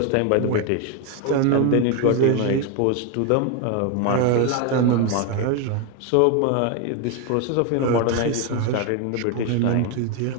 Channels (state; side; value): different; both; correlation 0.02